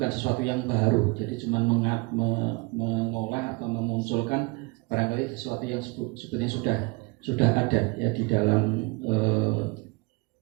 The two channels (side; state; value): left; quieter; 26.7 dB